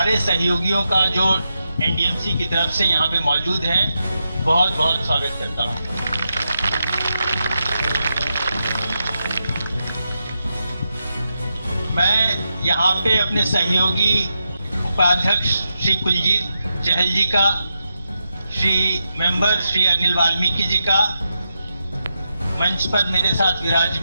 सहयोगियों का जो एनडीएमसी की तरफ से यहाँ पे मौजूद हैं बहुत बहुत स्वागत करता हूँ। मैं यहाँ पे अपने सहयोगी उपाध्यक्ष श्री कुलजीत चहल जी का, श्री मेंबर श्री अनिल वाल्मीकि जी का, मंच पर मेरे साथ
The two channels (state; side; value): inverted; both; correlation -0.87